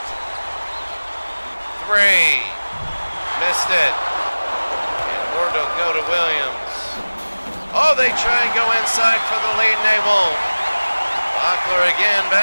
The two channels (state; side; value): inverted; both; correlation -1.00